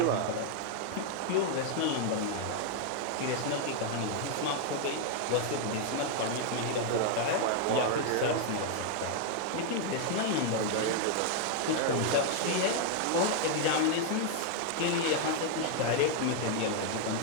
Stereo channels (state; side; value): different; both; correlation 0.00